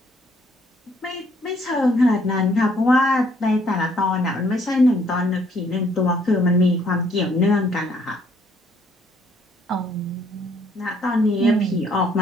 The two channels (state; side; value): normal; both; correlation 0.65